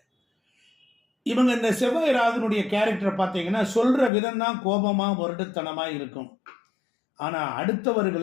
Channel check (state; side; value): drops out; right; at 4.1 s